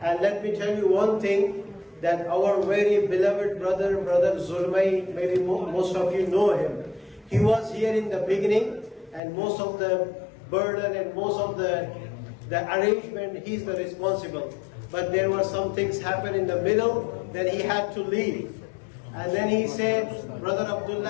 And let me tell you one thing, that our very beloved brother Zulmay, maybe most of you know him. He was here in the beginning, and most of the burden and most of the arrangement, he's the responsible. But there were some things happen in the middle, then he had to leave. And then he said, brother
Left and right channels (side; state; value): right; drops out; at 9.2 s